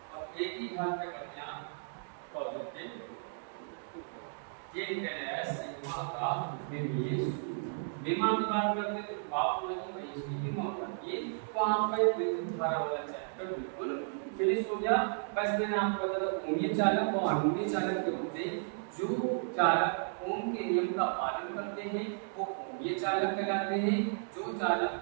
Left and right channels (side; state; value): left; silent; digital silence